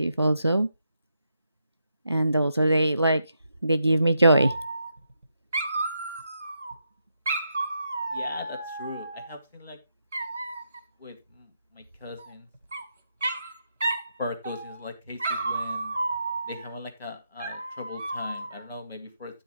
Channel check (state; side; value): inverted; both; correlation -0.82